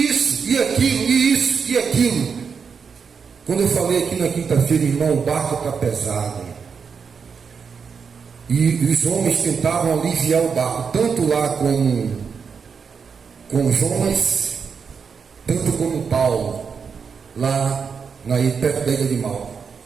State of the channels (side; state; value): left; quieter; 6.0 dB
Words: isso, e aquilo, e isso, e aquilo. Quando eu falei aqui na quinta-feira, irmão, o barco está pesado. E os homens tentavam aliviar o barco, tanto lá com Jonas, tanto como Paulo, lá perto da ilha de Malta.